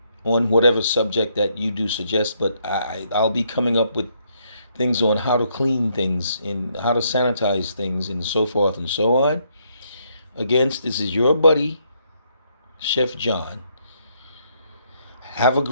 on whatever subject that you do suggest. But I'll be coming up with things on how to clean things and how to sanitize things and so forth and so on. Again, this is your buddy, Chef John. Have a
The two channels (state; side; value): inverted; both; correlation -0.73